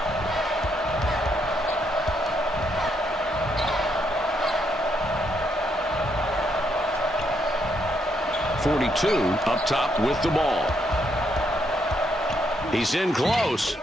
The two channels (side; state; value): both; normal; correlation 0.75